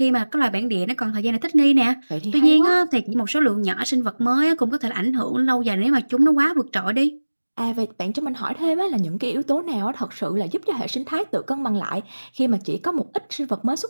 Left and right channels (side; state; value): both; inverted; correlation -1.00